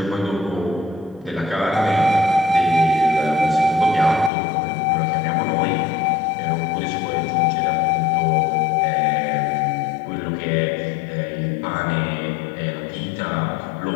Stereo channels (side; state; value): right; drops out; at 4.3 s